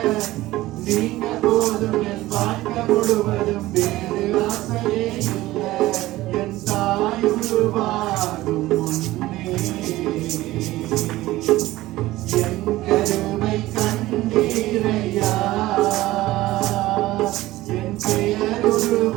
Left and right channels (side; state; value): left; quieter; 17.1 dB